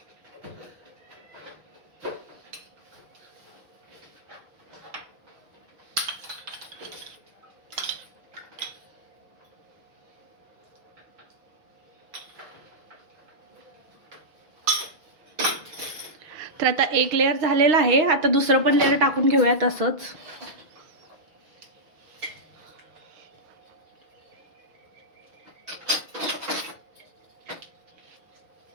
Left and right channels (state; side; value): late; left; 6.3 ms